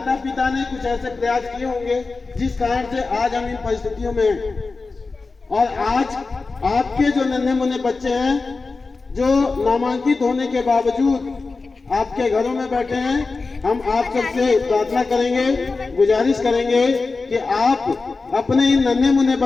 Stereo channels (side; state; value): right; quieter; 4.0 dB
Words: पिता ने कुछ ऐसे प्रयास किए होंगे जिस कारण से आज हम इन परिस्थितियों में हैं। और आज आपके जो नन्हे मुन्ने बच्चे हैं जो नामांकित होने के बावजूद आपके घरों में बैठे हैं, हम आप सबसे प्रार्थना करेंगे, गुजारिश करेंगे कि आप अपने इन नन्हे मुन्ने